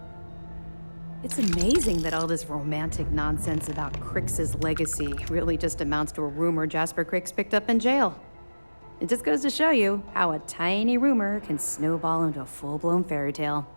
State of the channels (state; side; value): inverted; both; correlation -1.00